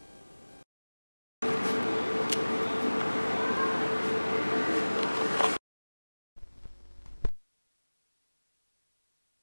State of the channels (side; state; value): both; inverted; correlation -1.00